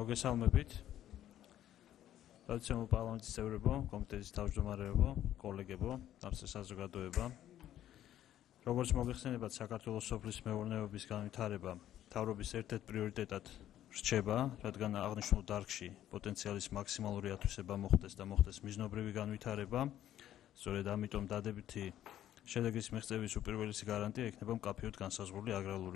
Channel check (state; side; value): quieter; right; 12.0 dB